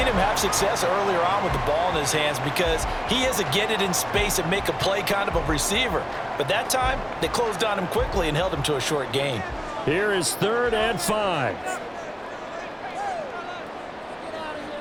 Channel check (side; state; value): both; identical; correlation 1.00